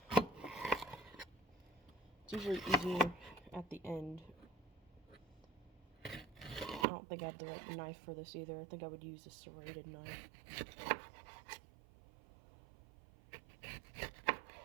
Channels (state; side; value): drops out; left; at 6.9 s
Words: It's usually easier at the end. I don't think I have the right knife for this either. I think I would use a serrated knife.